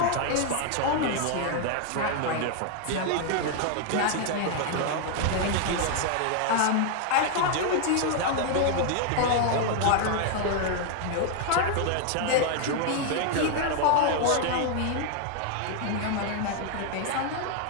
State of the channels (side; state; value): both; different; correlation 0.00